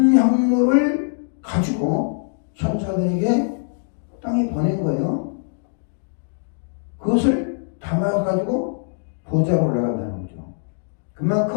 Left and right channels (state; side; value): silent; right; digital silence